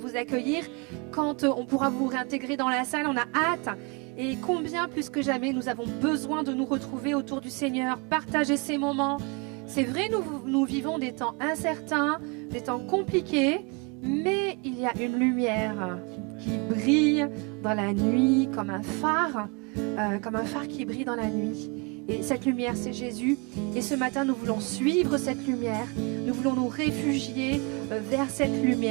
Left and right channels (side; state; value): left; quieter; 30.5 dB